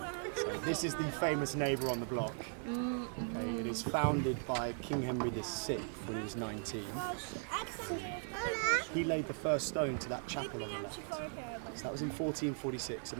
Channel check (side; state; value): left; silent; 52 dB below the other